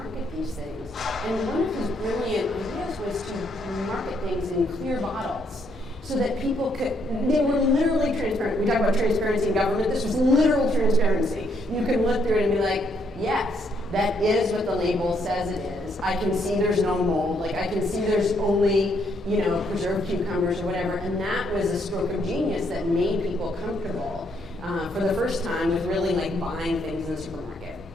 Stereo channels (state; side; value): normal; both; correlation 0.72